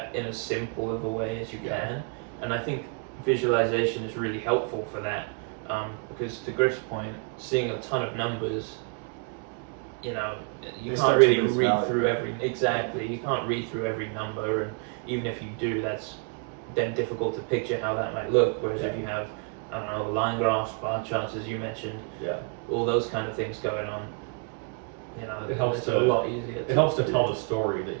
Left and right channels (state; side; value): quieter; left; 36.3 dB